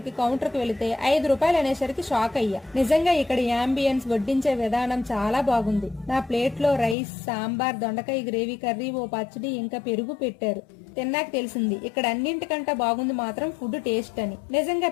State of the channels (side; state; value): right; drops out; at 7.0 s